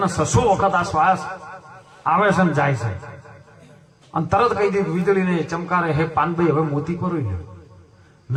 વખત આ શ્વાસ આવે છે ને જાય છે। અને તરત કહી દીધું વીજળીને ચમકારે, હે પાનભાઈ હવે મોતી પરોઈ લ્યો,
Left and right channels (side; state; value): both; identical; correlation 1.00